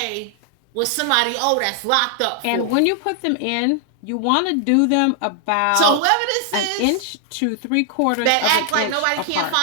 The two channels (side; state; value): both; different; correlation 0.00